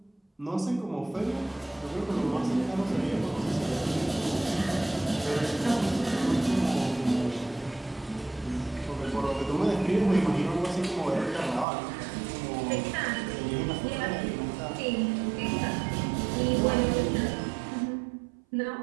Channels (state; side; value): drops out; left; at 11.7 s